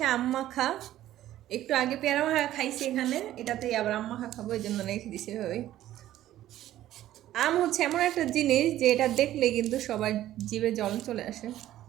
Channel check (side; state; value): left; quieter; 13.4 dB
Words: আম মাখা। একটু আগে পেয়ারা মাখা খাইছি এখানে, এটাতেই আবার আম মাখা খাবো, এই জন্য রেখে দিছি এভাবেই। আম হচ্ছে এমন একটা জিনিস যে এটা দেখলে কিন্তু সবার জিভে জল চলে আসে।